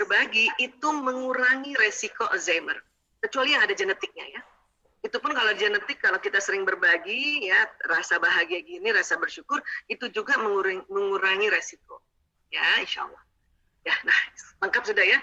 itu mengurangi resiko Alzheimer. Kecuali yang ada genetiknya ya. Itu pun kalau genetik, kalau kita sering berbagi ya, rasa bahagia gini, rasa bersyukur, itu juga mengurangi resiko. Ya, insya Allah. Ya, nah lengkap sudah ya.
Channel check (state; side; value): identical; both; correlation 1.00